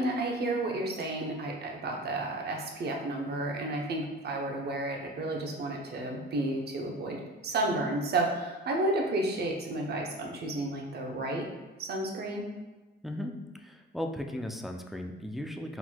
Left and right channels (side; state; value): both; normal; correlation 0.36